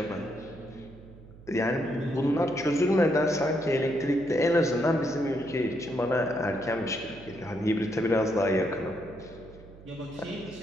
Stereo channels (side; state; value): right; noise; hum, 20 dB below the sound